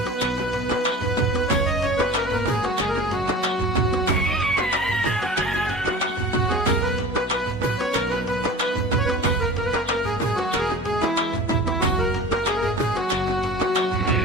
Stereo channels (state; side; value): normal; both; correlation 0.40